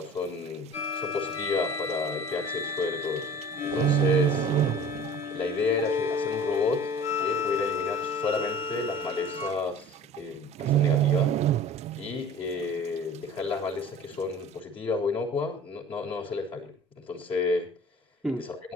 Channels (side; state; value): both; normal; correlation 0.43